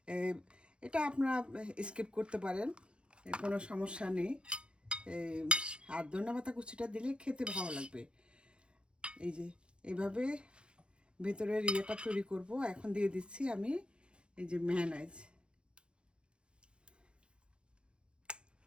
এটা আপনারা স্কিপ করতে পারেন, কোনো সমস্যা নেই। আর ধনেপাতা কুচিটা দিলে খেতে ভালো লাগবে। এই যে এইভাবে ভেতরের ইয়েটা তৈরি করব। এখন দিয়ে দিচ্ছি আমি এই যে মেয়োনিজ,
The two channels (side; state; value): left; late; 0.055 ms